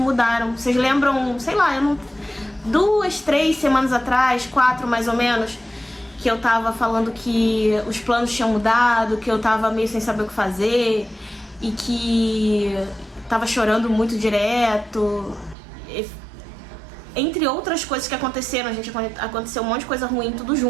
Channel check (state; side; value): drops out; left; at 15.6 s